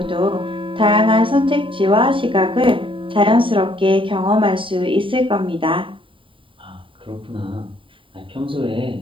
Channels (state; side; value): late; left; 0.25 ms